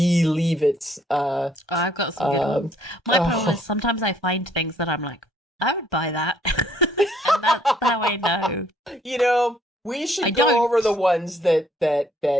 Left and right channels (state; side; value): normal; both; correlation 0.65